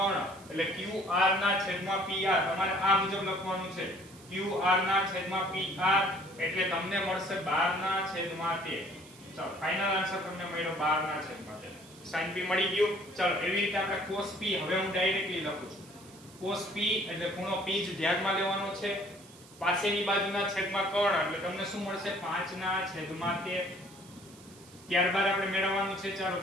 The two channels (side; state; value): right; noise; hiss, 22 dB below the sound